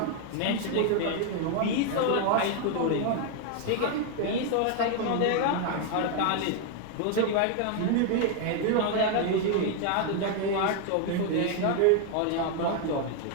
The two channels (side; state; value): both; different; correlation 0.00